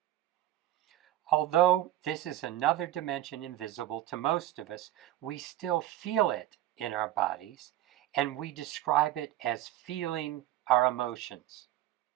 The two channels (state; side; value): quieter; left; 13.8 dB